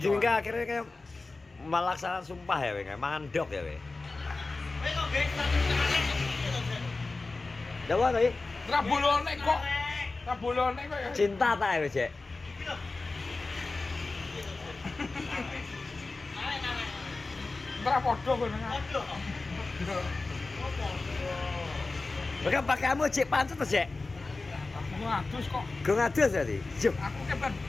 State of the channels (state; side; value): quieter; right; 3.5 dB